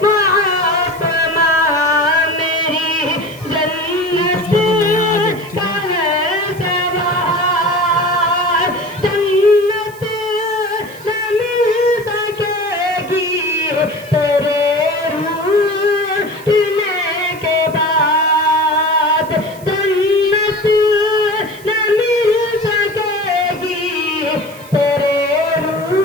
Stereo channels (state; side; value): noise; right; hiss, 22 dB below the sound